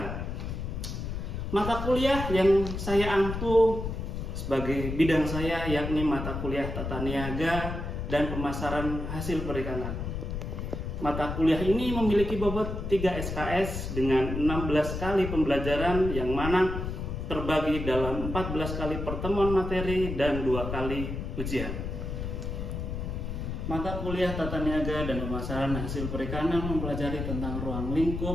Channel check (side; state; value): left; noise; rumble, 5 dB below the sound